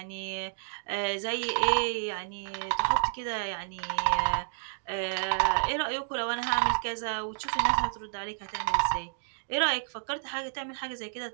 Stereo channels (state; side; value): silent; left; digital silence